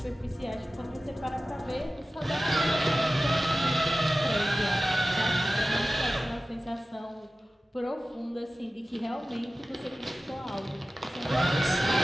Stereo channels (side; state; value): both; normal; correlation 0.96